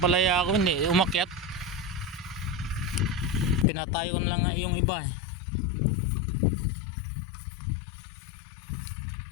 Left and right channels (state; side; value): drops out; right; at 3.7 s